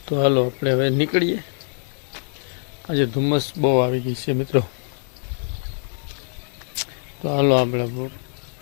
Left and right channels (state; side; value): silent; right; digital silence